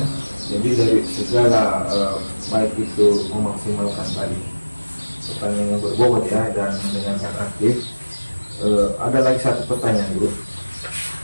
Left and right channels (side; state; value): both; inverted; correlation -1.00